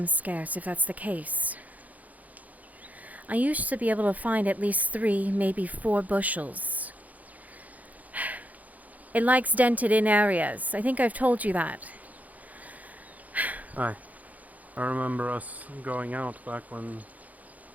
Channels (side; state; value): left; late; 0.077 ms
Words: scarce, if that's the case. I used to be able to find at least 3, maybe 4 bushels. It likes dented-in areas. I think I've told you that. Aye. I remember us going out back when